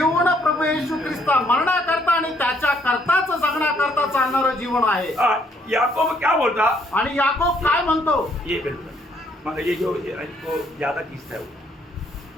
प्रभू येशू ख्रिस्ता मरण्याकरता आणि त्याच्या करताच जगण्याकरता चालणारं जीवन आहे. याकोब क्या बोलता? आणि याकोब काय म्हणतो? ये बिल्कुल मतलब ये जो ज्यादा किस्सा है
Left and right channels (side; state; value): both; normal; correlation 0.68